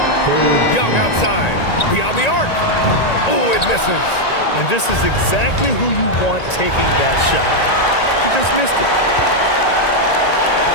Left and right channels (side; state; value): right; late; 1.9 ms